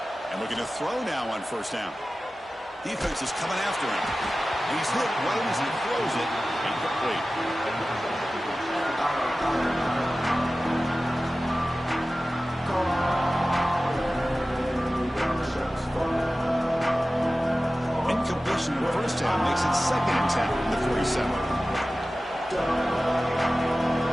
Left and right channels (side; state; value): both; normal; correlation 0.96